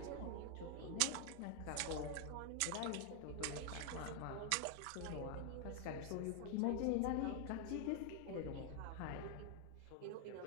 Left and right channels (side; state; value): both; different; correlation 0.00